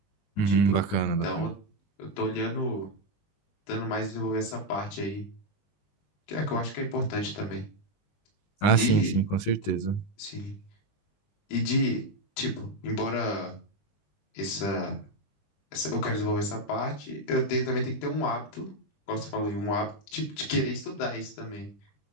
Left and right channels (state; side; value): late; right; 20 ms